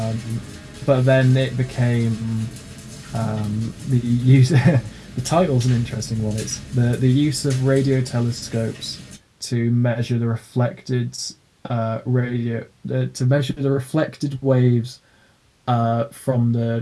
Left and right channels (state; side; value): identical; both; correlation 1.00